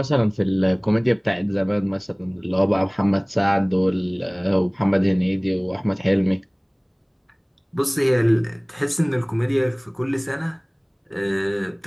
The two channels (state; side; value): identical; both; correlation 1.00